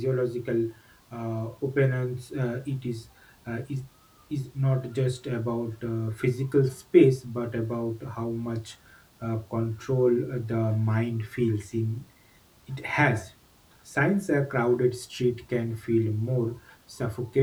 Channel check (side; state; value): both; identical; correlation 1.00